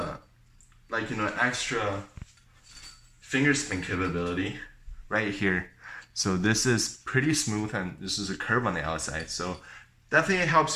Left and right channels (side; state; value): both; identical; correlation 1.00